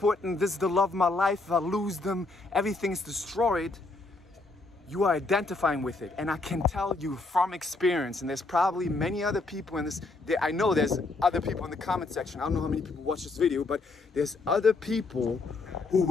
this is the love of my life, if I lose them, everything's destroyed, you are identifying with it. And I can tell you from experience, and there's probably many other people in this, I know there's other people in the comment section, I don't know how many people watch this video, but there's other people who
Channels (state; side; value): quieter; right; 3.4 dB